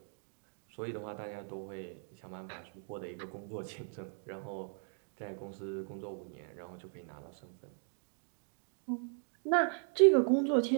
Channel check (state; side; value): silent; left; 53 dB below the other